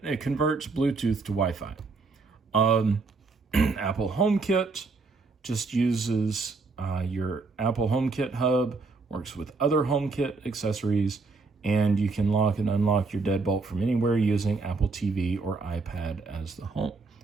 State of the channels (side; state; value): left; quieter; 4.1 dB